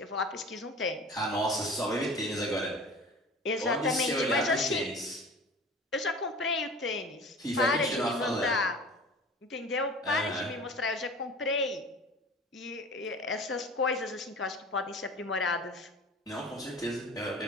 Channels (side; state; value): both; normal; correlation 0.40